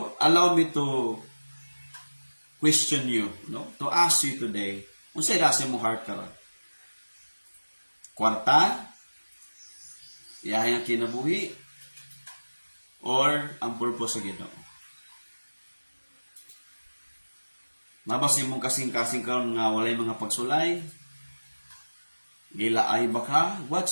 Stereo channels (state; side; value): inverted; both; correlation -1.00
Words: allow me to question you, to ask you today, unsa ra si mong heart karon? Kwarta? Iyahay ang kinabuhi? Or ang purpose sa Ginoo? Nabas imong kasing-kasing karon nga walay mga pagsulay? Gilaay ba ka?